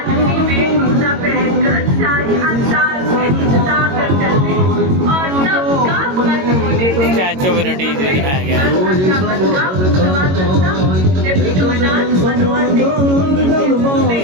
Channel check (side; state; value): left; late; 22 ms